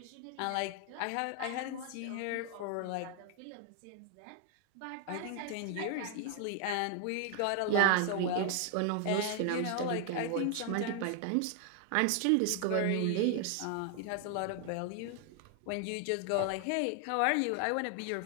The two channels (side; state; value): both; different; correlation 0.00